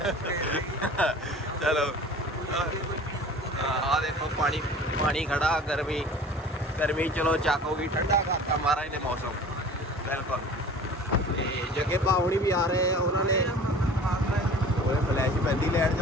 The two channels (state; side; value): normal; both; correlation 0.43